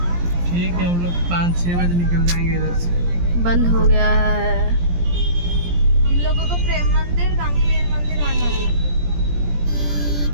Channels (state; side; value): late; left; 17 ms